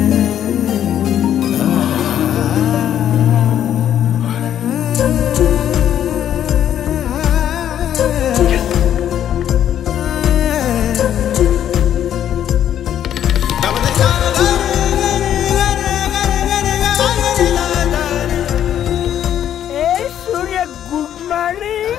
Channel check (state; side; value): quieter; right; 10.4 dB